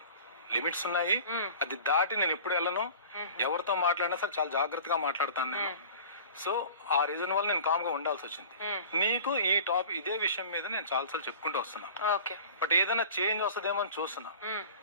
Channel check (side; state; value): both; inverted; correlation -0.40